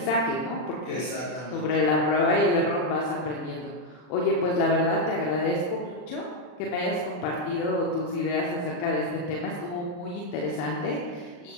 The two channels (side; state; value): right; late; 40 ms